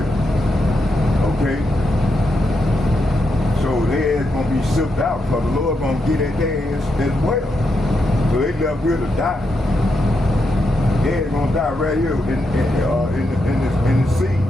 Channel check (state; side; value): normal; both; correlation 0.83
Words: Okay? So their ass gonna be shipped out because the Lord gonna get at their ass as well. So they left here to die. They're gonna die right here in the sea.